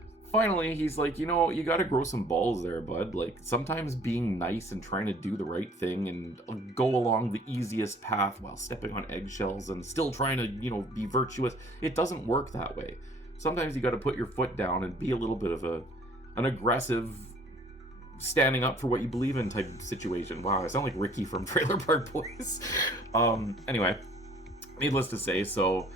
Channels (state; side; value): normal; both; correlation 0.55